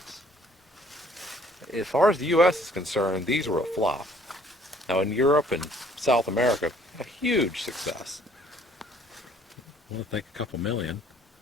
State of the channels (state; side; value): normal; both; correlation 0.60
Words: As far as the U.S. is concerned, these were a flop. Now, in Europe and South America, a huge success. I think a couple million.